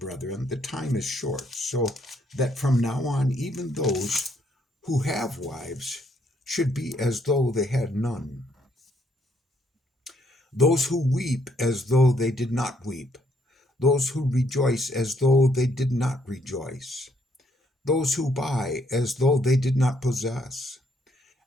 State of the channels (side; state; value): both; normal; correlation 0.70